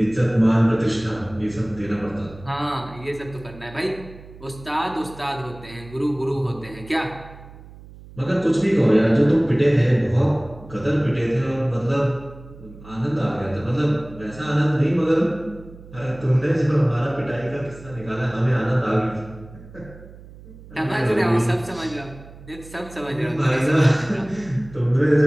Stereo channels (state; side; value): noise; right; hum, 19 dB below the sound